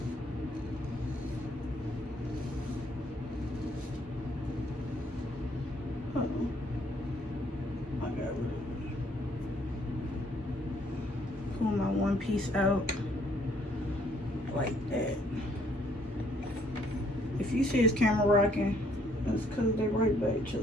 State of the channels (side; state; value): both; normal; correlation 0.66